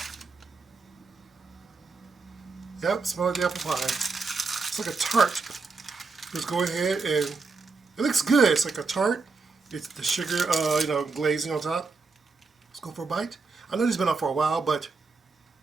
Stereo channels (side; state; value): left; quieter; 4.3 dB